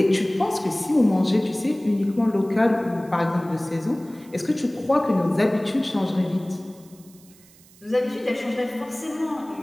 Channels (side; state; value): right; noise; hiss, 26 dB below the sound